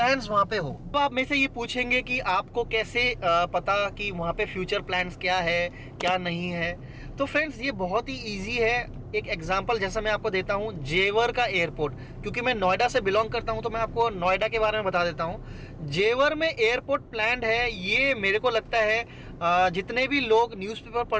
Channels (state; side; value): identical; both; correlation 1.00